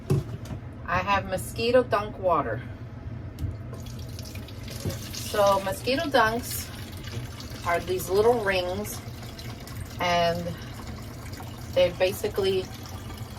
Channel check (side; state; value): both; identical; correlation 1.00